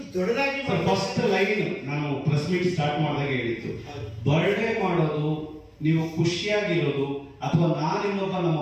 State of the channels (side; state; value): both; identical; correlation 1.00